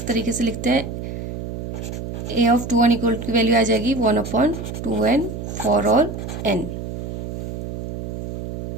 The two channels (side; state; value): right; noise; hum, 6 dB below the sound